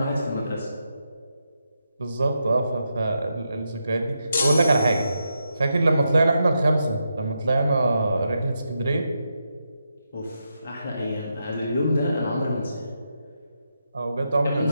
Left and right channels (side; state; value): both; inverted; correlation -0.84